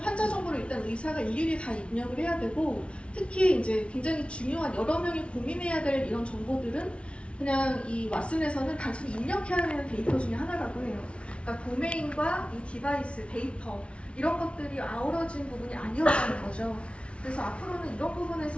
정보를 일단 의사가 일일이 다 입력을 해야 되고, 특히 이제 굉장히 중요한 여러 명이 고민해야 될 이런 정보들은 그냥 이 왓슨에서는 단순히 입력해야 되는 데이터 중에 하나라고 해요. 그러니까 도메인과 이 디바이스, 데이터 이런 것들이 아우러진 부분이 아니었다는 거죠. 그래서 앞으로는 이런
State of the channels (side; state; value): right; late; 0.060 ms